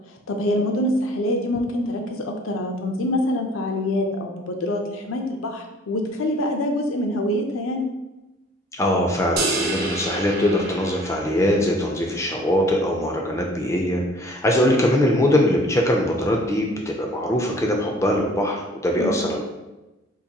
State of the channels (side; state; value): both; normal; correlation 0.53